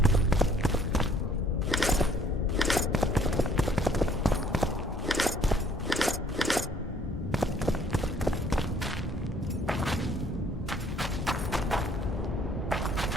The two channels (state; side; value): normal; both; correlation 0.61